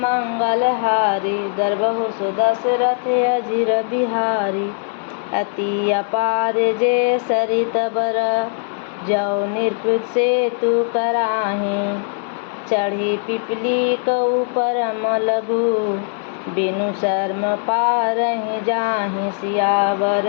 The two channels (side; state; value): right; silent; digital silence